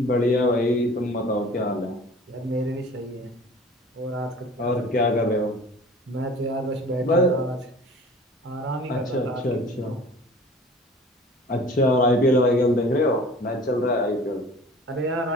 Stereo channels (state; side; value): normal; both; correlation 0.45